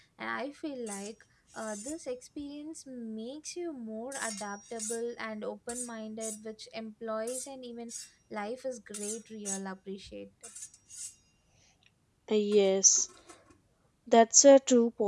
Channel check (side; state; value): both; identical; correlation 1.00